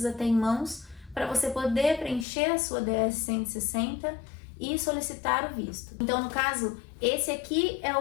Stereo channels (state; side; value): drops out; right; at 2.2 s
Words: ter em mãos para você poder preencher a sua DS-160 e solicitar o visto. Então, no caso, esse aqui é